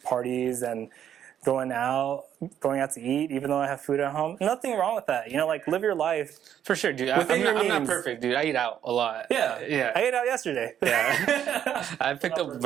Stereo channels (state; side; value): quieter; left; 9.7 dB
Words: parties and going out to eat, even though I have food at home. Nothing wrong with that. Like live your life. For sure, dude. Within your I'm not means. perfect, dude. I eat out a lot. Yeah. Yeah. I ate out yesterday. Yeah. I picked up